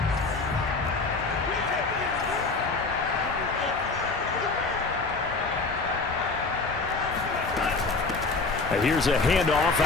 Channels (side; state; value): right; quieter; 3.9 dB